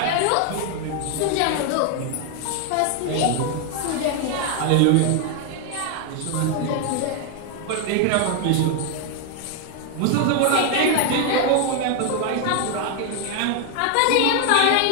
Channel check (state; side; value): different; both; correlation 0.01